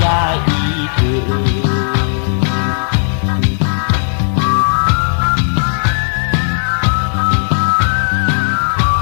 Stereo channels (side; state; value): right; silent; digital silence